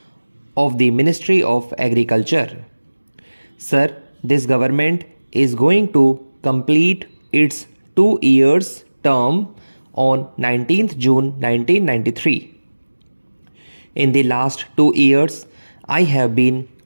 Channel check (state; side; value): inverted; both; correlation -1.00